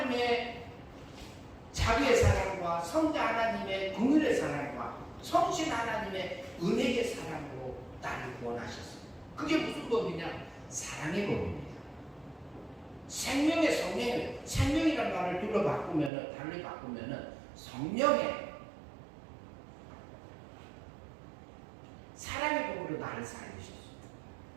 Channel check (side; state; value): left; drops out; at 16.1 s